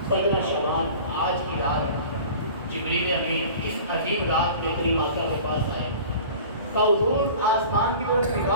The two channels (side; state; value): both; inverted; correlation -0.41